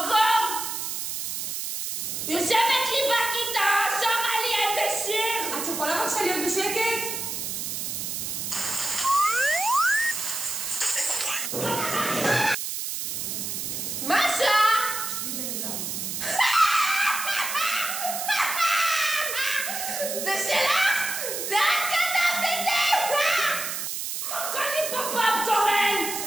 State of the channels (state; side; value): noise; right; hiss, 4 dB below the sound